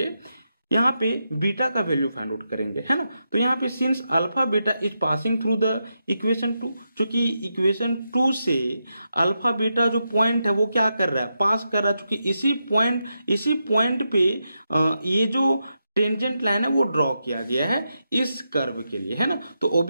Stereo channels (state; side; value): inverted; both; correlation -0.86